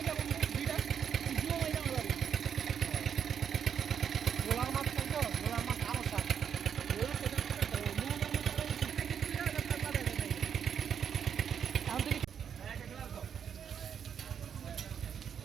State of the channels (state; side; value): quieter; left; 7.9 dB